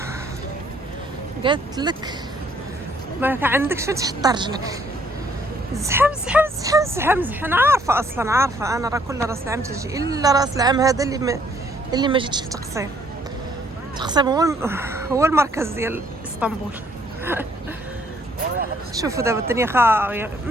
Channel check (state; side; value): normal; both; correlation 0.65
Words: قالت لك ما عندكش فين تحط رجلك. زحام. انا عارفه انا راه كل راس العام تجي الا راس العام هذا اللي ما جيتش للتقسيم. التقسيم هو المركز ديال اسطنبول. شوفوا دابا الدنيا خاويه